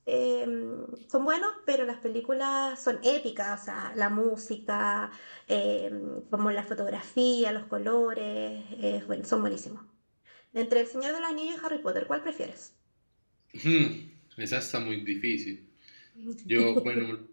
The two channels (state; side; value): inverted; both; correlation -1.00